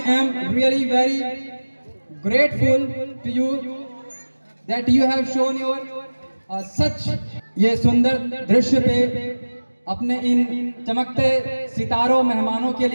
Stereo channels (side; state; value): both; inverted; correlation -1.00